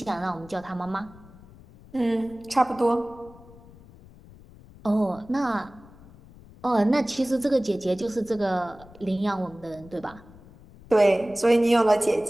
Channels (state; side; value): noise; left; rumble, 22 dB below the sound